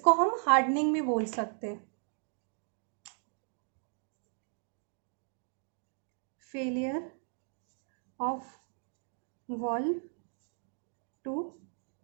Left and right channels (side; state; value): left; silent; 54 dB below the other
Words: हम हार्डनिंग भी बोल सकते हैं। Failure of valve to